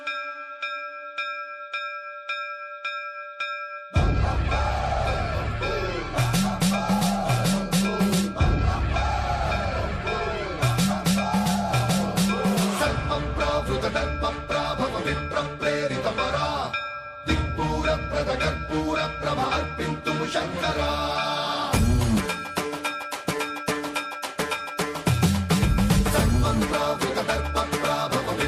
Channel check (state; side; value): identical; both; correlation 1.00